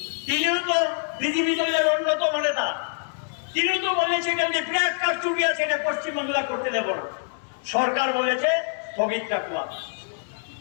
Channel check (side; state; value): right; silent; 62 dB below the other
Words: তিনিও তো বিজেপি দলের অন্যতম নেতা, তিনিও তো বলেছে যে বিরাট কারচুপি আছে, এটা পশ্চিমবাংলা করতে দেব না। সরকার বলেছে স্থগিত রাখলাম।